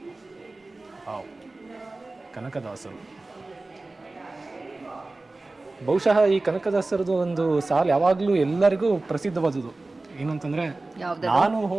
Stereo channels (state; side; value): quieter; left; 3.1 dB